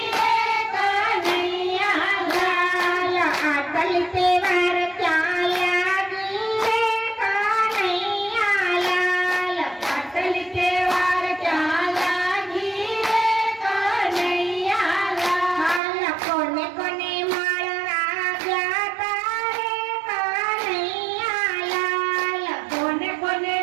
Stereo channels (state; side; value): drops out; left; at 15.8 s